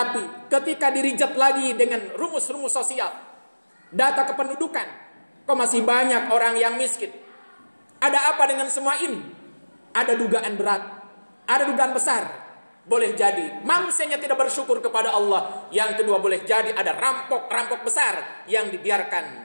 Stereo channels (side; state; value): both; inverted; correlation -1.00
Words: ketika dirijat lagi dengan rumus-rumus sosial, data kependudukan, kok masih banyak orang yang miskin. Ada apa dengan semua ini? Ada dugaan berat, ada dugaan besar. Boleh jadi manusianya tidak bersyukur kepada Allah. Yang kedua, boleh jadi ada rampok-rampok besar yang